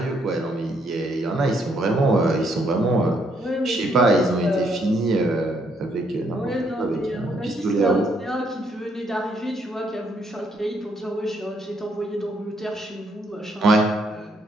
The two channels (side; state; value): both; normal; correlation 0.72